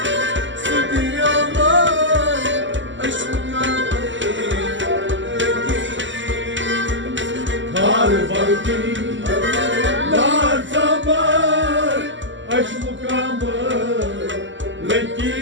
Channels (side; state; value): left; late; 0.54 ms